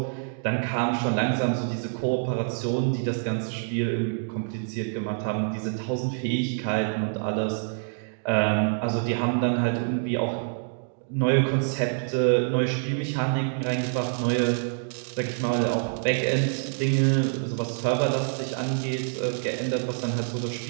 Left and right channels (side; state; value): left; silent; digital silence